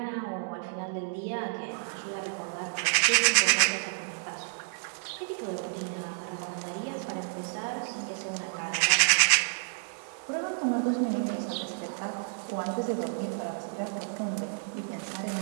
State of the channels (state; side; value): silent; left; digital silence